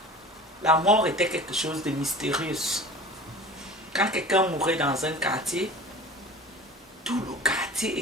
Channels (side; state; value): both; normal; correlation 0.39